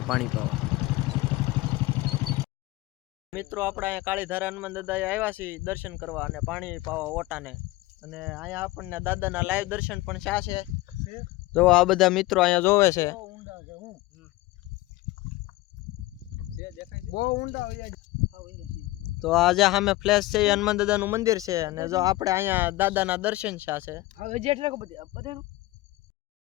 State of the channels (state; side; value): quieter; right; 18.6 dB